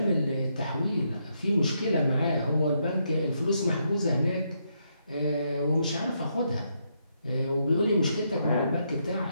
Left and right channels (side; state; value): both; inverted; correlation -0.78